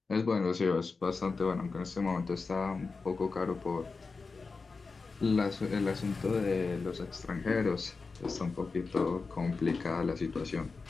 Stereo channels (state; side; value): quieter; right; 4.3 dB